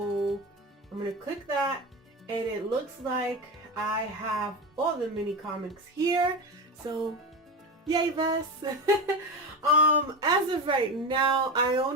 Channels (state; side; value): normal; both; correlation 0.20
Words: I'm gonna click that and it looks like I have all the mini comics here. So yay, Vess. As of right now, I